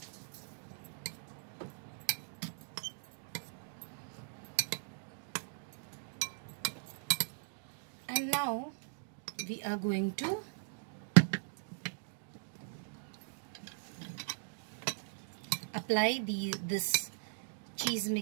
and now we are going to apply this cheese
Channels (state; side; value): silent; left; digital silence